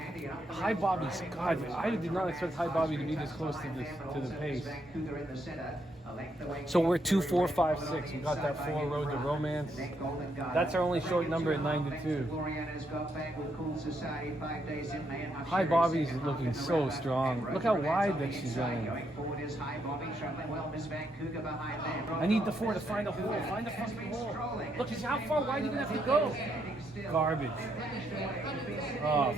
And up the High rails, Bobby's, Brian God, Wilson I did not expect High Bobby to be this close to the pace. Vancouver in the center. A length away. So we're 2, 4, 5, 6. We got that 4 road to romance. That's our only short number at 9 to 2. High Bobby's looking so strong. Look how wide that she's running. I need the 4 to find a hole. Find a fucking hole. Look, how far wide are you gonna have to go? Garbage. Oh,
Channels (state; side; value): normal; both; correlation 0.77